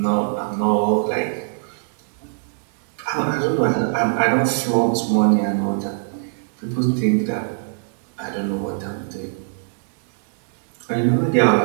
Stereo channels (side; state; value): left; silent; digital silence